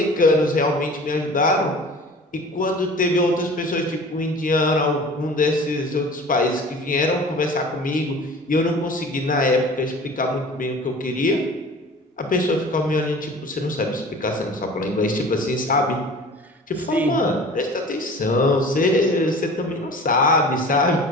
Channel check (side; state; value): both; normal; correlation 0.42